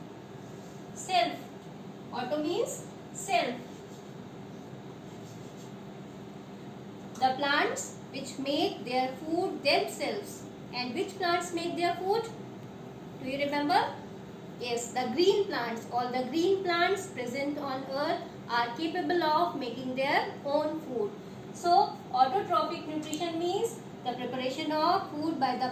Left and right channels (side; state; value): both; identical; correlation 1.00